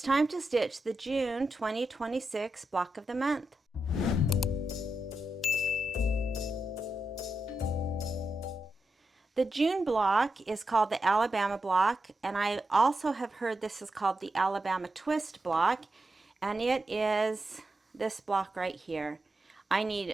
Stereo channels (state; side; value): normal; both; correlation 0.88